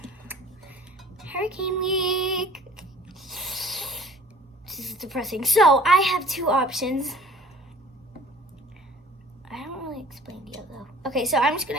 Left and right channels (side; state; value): both; normal; correlation 0.49